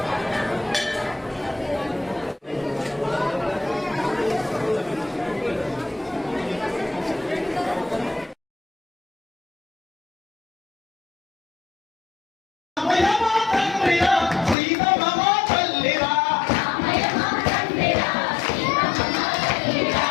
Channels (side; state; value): right; drops out; at 14.6 s